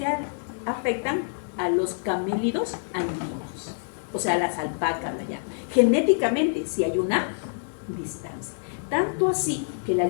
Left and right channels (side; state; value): right; silent; digital silence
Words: afectan a los camélidos andinos, o sea, las alpacas allá. Genéticamente sí hay una distancia. Tanto así que la